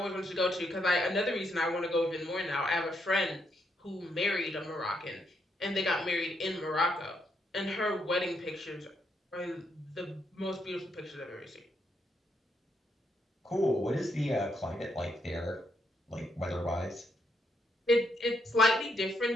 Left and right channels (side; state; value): both; normal; correlation 0.77